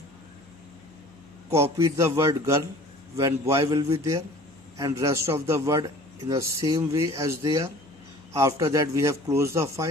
copied the word girl when boy will be there and rest of the word in the same way as they are. After that we have closed the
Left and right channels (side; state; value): right; noise; hum, 29 dB below the sound